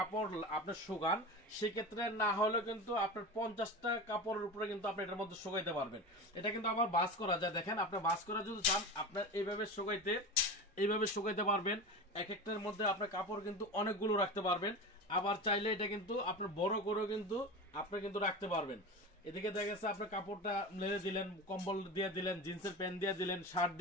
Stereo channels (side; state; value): both; normal; correlation 0.27